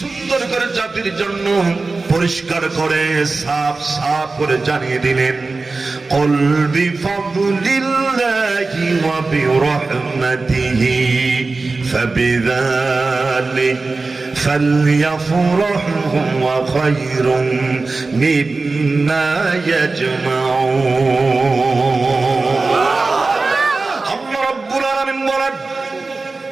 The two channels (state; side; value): quieter; left; 3.7 dB